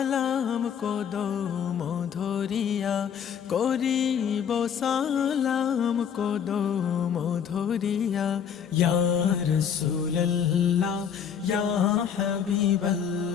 কদম ধরিয়া, করিব সালাম কদম ধরিয়া। ইয়া রাসূলুল্লাহ ইয়া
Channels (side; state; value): right; quieter; 7.8 dB